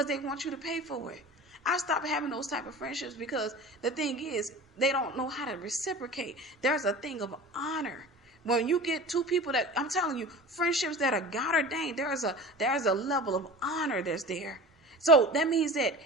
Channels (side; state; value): both; normal; correlation 0.36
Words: they want you to pay for it. I stopped having those type of friendships because the thing is, they don't know how to reciprocate. There's a thing of honor. When you get two people that, I'm telling you, friendships that are God ordained, there's a level of honor that's there. So that means that